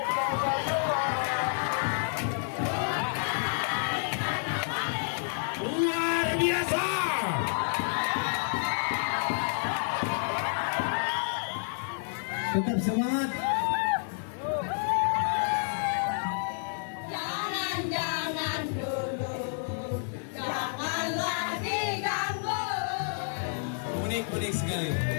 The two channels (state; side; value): silent; right; digital silence